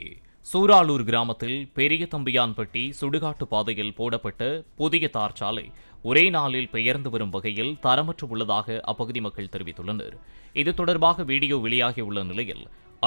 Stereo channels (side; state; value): both; inverted; correlation -1.00